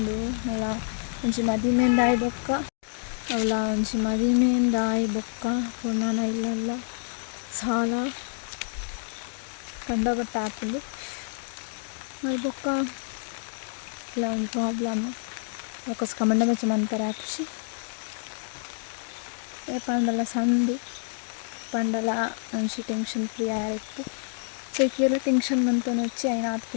ಅಲ್ಲ ಒಂಜಿ ಮದಿಮೆಂದಾಯಿ ಬೊಕ್ಕ ಅವಳ ಒಂಜಿ ಮದಿಮೆಂದಾಯಿ ಬೊಕ್ಕ ಪುರ್ಣನ ಇಲ್ಲಲ್ಲ ಸಾಲ ಕಂಡಬಟ್ಟ ಆಪುಂಡು ಅದು ಬೊಕ್ಕ ಇಲ್ಲ ಒಂದು ಪ್ರಾಬ್ಲಮ್ ಅದಕ್ಕೋಸ್ಕರ ಮಂಡ ಮೆಚ್ಚ ಮನ್ಪರೆ ಆಪುಷಿ ಏ ಪಂಡಲ ಸಂದು ಪಂಡಲ ಒಂಜಿ ಟೆನ್ಷನ್ ಫ್ರೀ ಆಯಿಪ್ಪು ಸೊ ಈಕೆಲ್ಲ ಟೆನ್ಷನ್ ಮಂತೊಂದು వచ్చి అయిన ಆತ್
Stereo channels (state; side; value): silent; right; 60 dB below the other